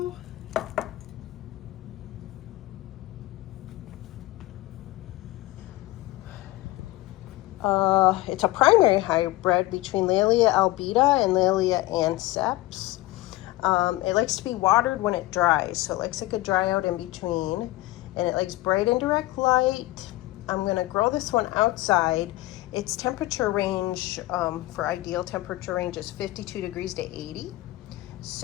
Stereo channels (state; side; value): quieter; right; 18.6 dB